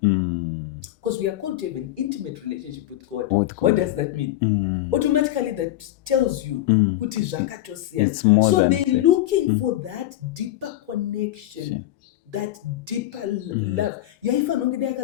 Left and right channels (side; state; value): right; quieter; 14.5 dB